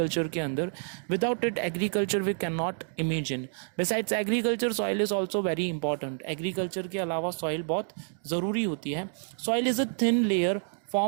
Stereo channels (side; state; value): left; silent; digital silence